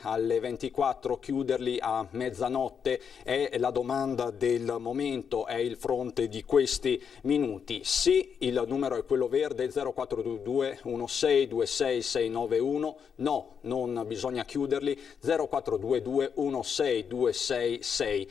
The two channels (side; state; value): right; quieter; 7.0 dB